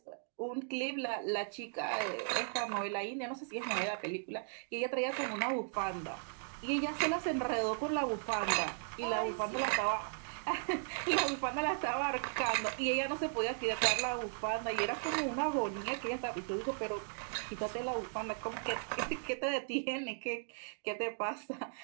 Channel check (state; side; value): silent; left; digital silence